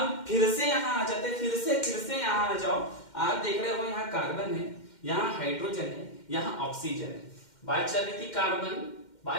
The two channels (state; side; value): late; right; 2.1 ms